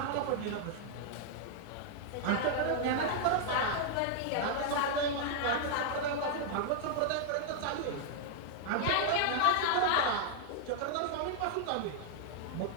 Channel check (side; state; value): both; different; correlation 0.00